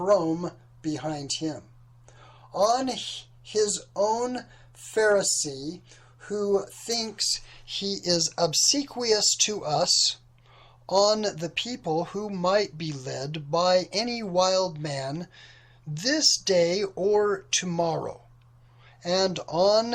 behind him, on his own Pharisee, who thinks he is obsequious to us, on the people who might be led by any wild man this day or tomorrow, and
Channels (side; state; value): both; identical; correlation 1.00